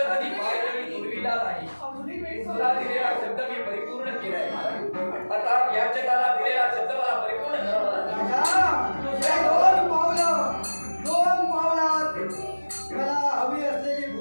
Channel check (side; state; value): both; inverted; correlation -1.00